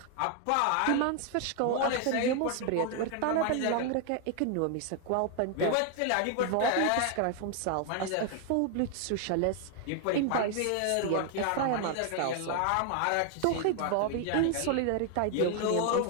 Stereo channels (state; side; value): different; both; correlation 0.00